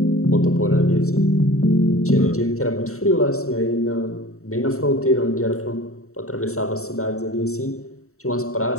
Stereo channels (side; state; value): right; late; 0.64 ms